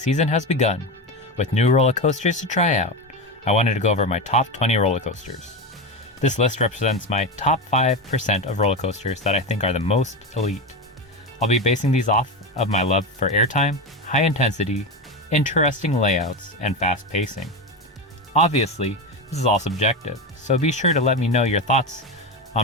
has begun, with new roller coasters to try out, I wanted to go over my top 20 roller coasters. This list represents my top 5% of roller coasters that I think are the most elite. I'll be basing these off of my love for airtime, high intensity, interesting layouts, and fast pacing. Obviously, this is all subjective, so be sure to let me know your thoughts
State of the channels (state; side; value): normal; both; correlation 0.17